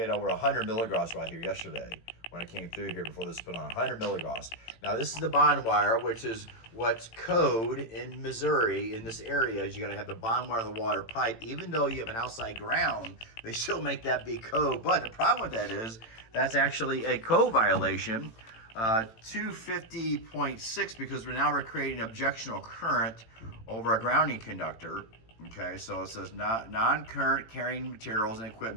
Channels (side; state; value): right; late; 18 ms